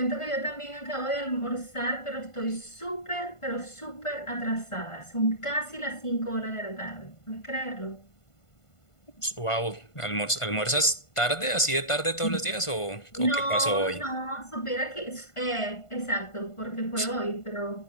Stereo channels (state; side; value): late; right; 1.5 ms